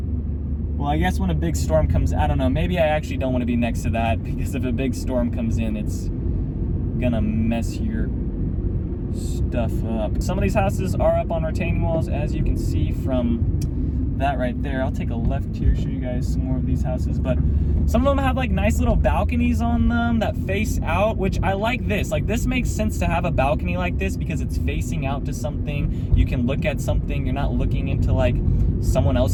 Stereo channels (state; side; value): identical; both; correlation 1.00